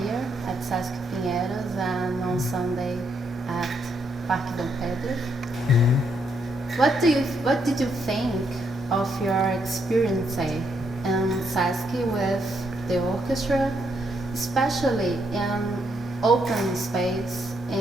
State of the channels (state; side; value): noise; right; hum, 27 dB below the sound